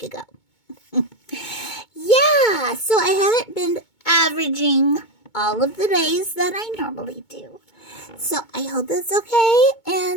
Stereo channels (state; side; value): late; right; 2.2 ms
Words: ago. Yeah, so I haven't been averaging all of the days that I normally do. So I hope that's okay.